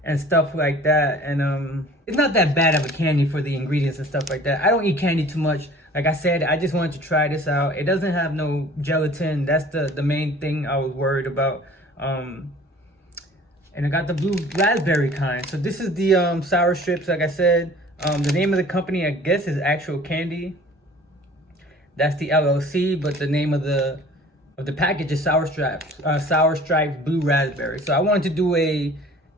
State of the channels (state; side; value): normal; both; correlation 0.48